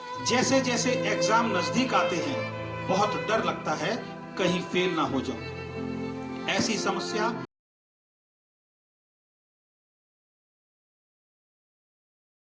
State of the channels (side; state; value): both; identical; correlation 1.00